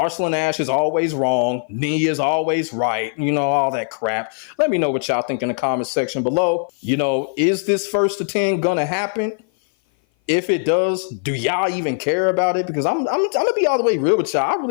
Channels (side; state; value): right; silent; 57 dB below the other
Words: Ash is always wrong. Knee is always right. You know, all that crap. Let me know what y'all think in the comment section below. You know, is this 1st to 10 gonna happen? If it does, do y'all even care about it? Because I'm gonna be all the way real with y'all. I